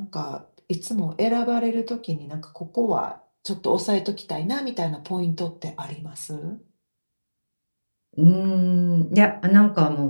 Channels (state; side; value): inverted; both; correlation -1.00